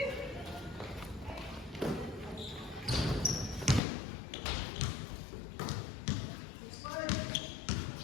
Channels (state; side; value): drops out; right; at 3.8 s